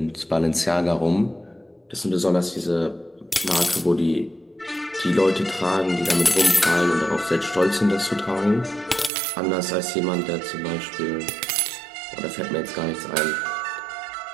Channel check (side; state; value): left; drops out; at 9.1 s